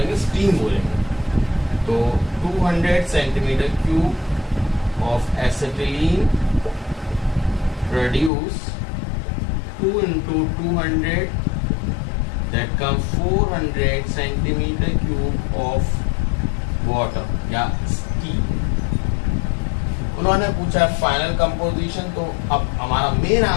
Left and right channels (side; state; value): right; drops out; at 8.3 s